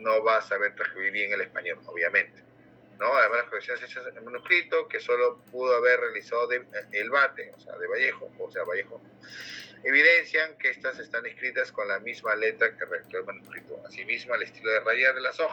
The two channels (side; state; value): both; identical; correlation 1.00